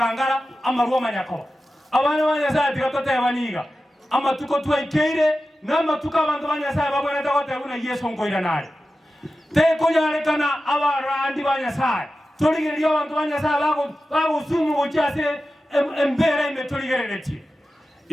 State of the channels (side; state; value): both; normal; correlation 0.93